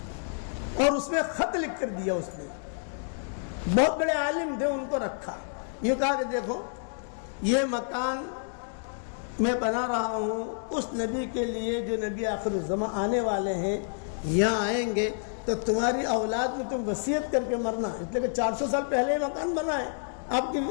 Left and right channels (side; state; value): right; silent; digital silence